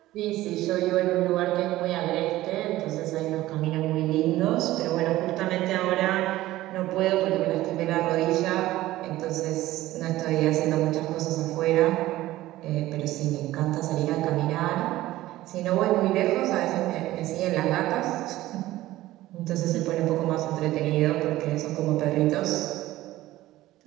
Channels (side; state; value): left; quieter; 16.1 dB